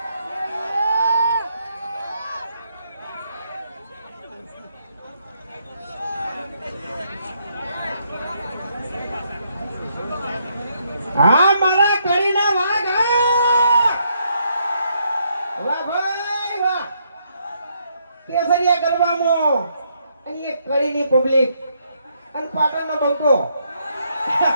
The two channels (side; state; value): both; inverted; correlation -0.74